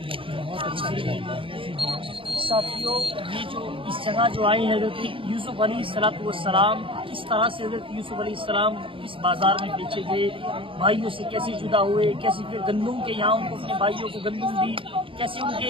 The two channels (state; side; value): late; left; 0.25 ms